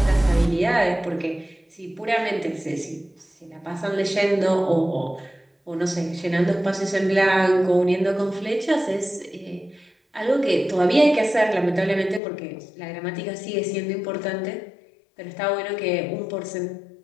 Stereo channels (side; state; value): right; drops out; at 12.2 s